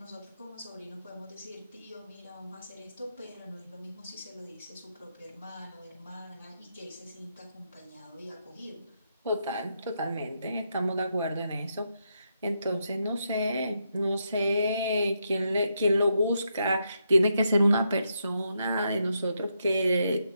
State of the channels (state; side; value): inverted; both; correlation -0.81